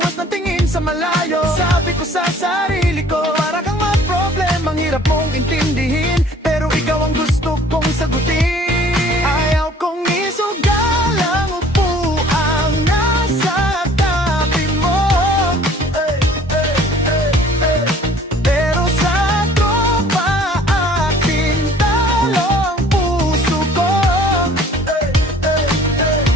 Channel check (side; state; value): both; normal; correlation 0.53